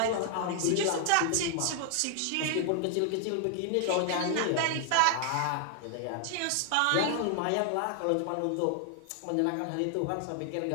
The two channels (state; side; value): different; both; correlation 0.00